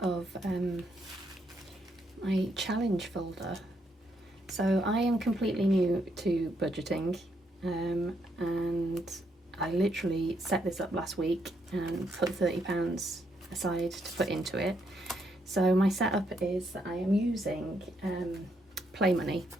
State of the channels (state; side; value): normal; both; correlation 0.76